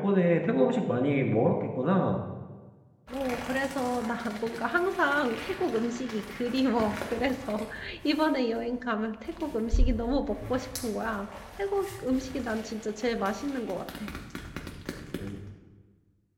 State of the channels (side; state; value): both; identical; correlation 1.00